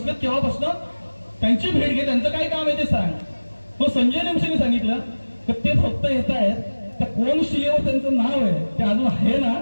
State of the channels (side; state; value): both; inverted; correlation -1.00